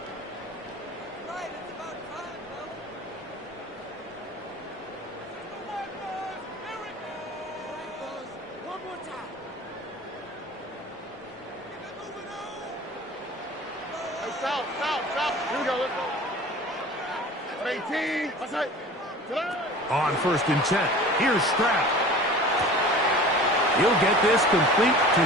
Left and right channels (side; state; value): both; normal; correlation 0.41